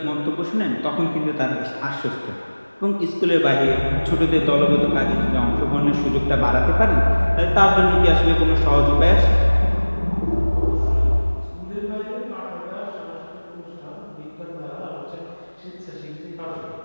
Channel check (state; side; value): inverted; both; correlation -1.00